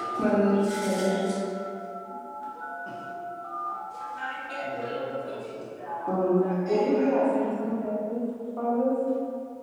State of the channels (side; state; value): both; identical; correlation 1.00